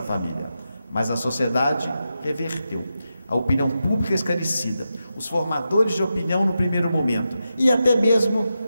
família. Mas a sociedade reverteu, a opinião pública esclarecida, os formadores de opinião no primeiro momento, e até mesmo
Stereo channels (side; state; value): both; inverted; correlation -0.89